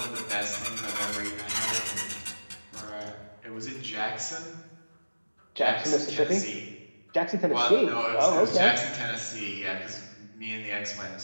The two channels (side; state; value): both; inverted; correlation -1.00